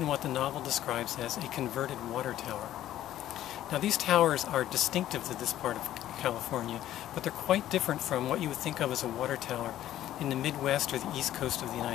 what the novel describes as a converted water tower. Now, these towers are distinctive to this part of California, but they're quite different from what you would think of as a water tower in the Midwest or the East Coast of the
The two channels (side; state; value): right; quieter; 12.8 dB